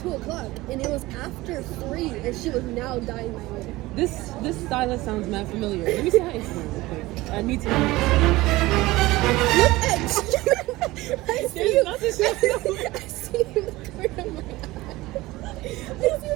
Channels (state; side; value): quieter; left; 19.2 dB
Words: o'clock, and it was after 3, and she was now dyeing my hair. This stylist sounds mad familiar. Let me see her Instagram real quick. I need to know. Look at you! I see you. I see you in the corner of my eye. I see you